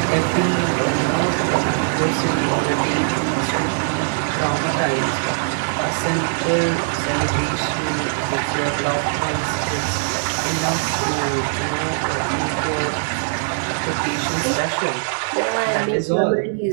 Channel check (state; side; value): silent; left; digital silence